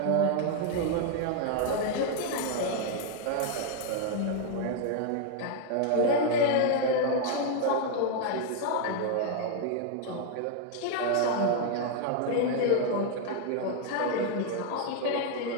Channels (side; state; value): both; different; correlation 0.00